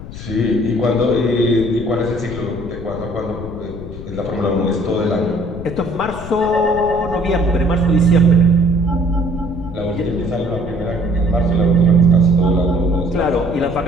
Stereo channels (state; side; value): noise; left; rumble, 12 dB below the sound